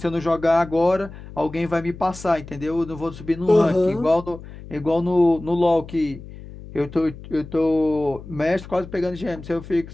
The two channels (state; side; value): noise; left; hum, 15 dB below the sound